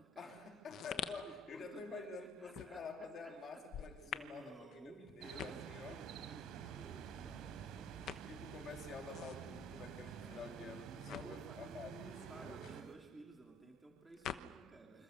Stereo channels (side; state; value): both; normal; correlation 0.55